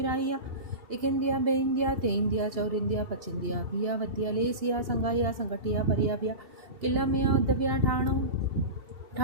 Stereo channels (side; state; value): left; late; 2.7 ms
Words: एक इंदिया बे इंदिया ते इंदिया चौर इंदिया पच इंदिया भिया वतिया लेसिया संगाइया संगटिया परिया बिया किला मिया उद्दव्या